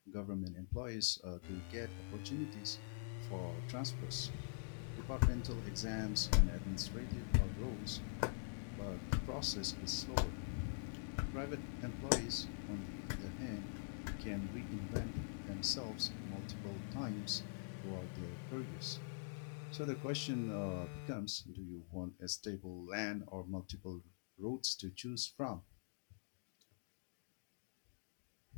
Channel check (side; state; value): right; silent; digital silence